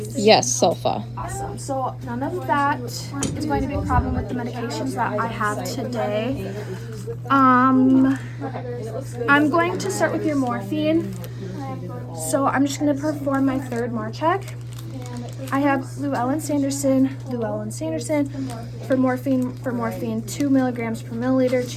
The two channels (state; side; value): identical; both; correlation 1.00